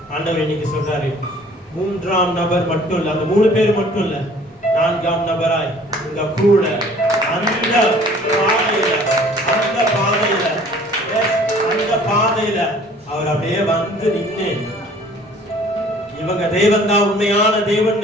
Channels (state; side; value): normal; both; correlation 0.52